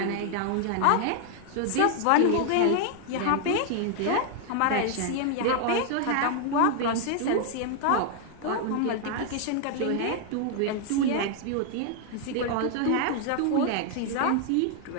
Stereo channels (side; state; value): both; different; correlation 0.00